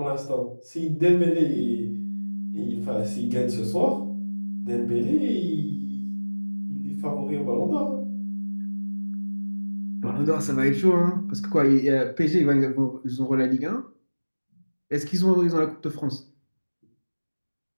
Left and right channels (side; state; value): both; inverted; correlation -1.00